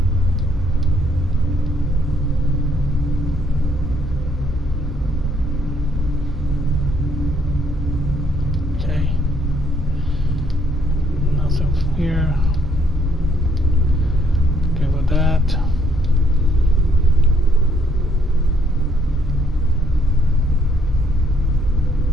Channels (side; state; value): both; normal; correlation 0.69